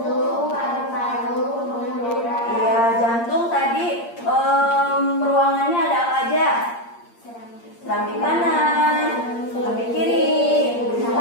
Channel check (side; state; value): right; late; 8.6 ms